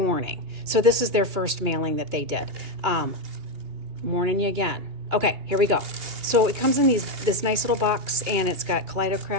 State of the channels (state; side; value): late; left; 2.8 ms